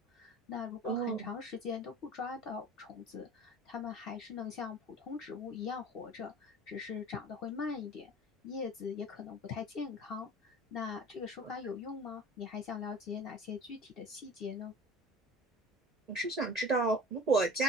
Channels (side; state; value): both; normal; correlation 0.40